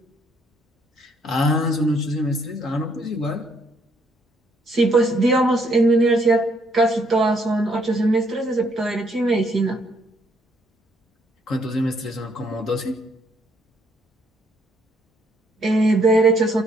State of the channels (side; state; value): both; normal; correlation 0.69